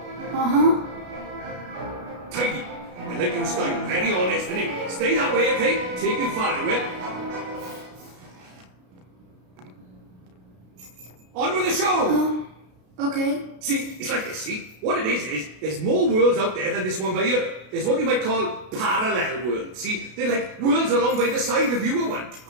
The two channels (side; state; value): left; late; 33 ms